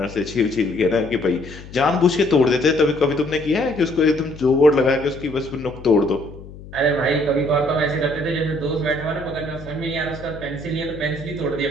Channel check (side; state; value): left; noise; hum, 16 dB below the sound